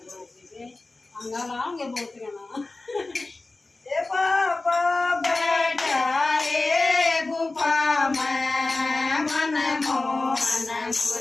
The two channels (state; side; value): quieter; right; 3.3 dB